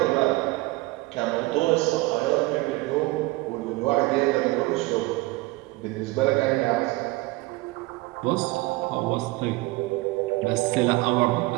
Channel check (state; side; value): quieter; left; 21.5 dB